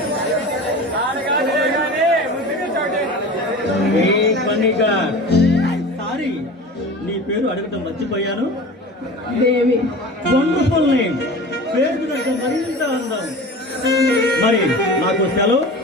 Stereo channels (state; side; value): normal; both; correlation 0.35